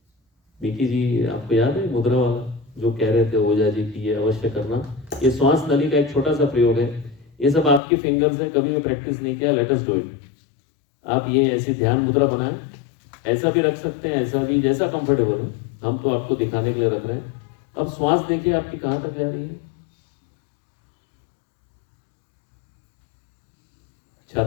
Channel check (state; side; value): drops out; right; at 7.8 s